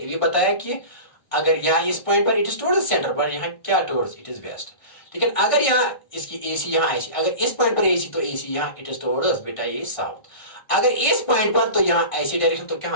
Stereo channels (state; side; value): late; right; 1.5 ms